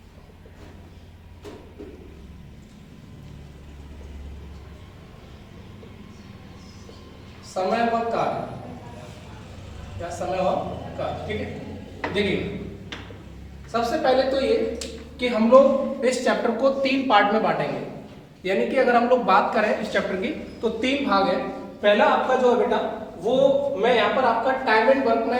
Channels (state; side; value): identical; both; correlation 1.00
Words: समय व कार्य, क्या समय व कार्य, ठीक है। देखिए सबसे पहले तो ये कि हम लोग इस चैप्टर को 3 पार्ट में बांटेंगे, यानी कि अगर हम लोग बात करें इस चैप्टर की तो 3 भाग है। पहला आपका जो है बेटा वो मैं यहाँ पर आपका टाइम एंड वर्क